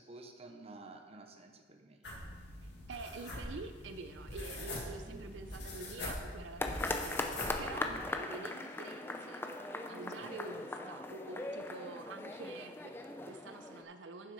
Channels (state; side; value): normal; both; correlation 0.42